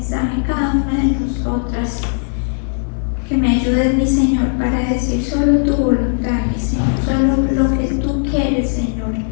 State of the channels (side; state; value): right; silent; digital silence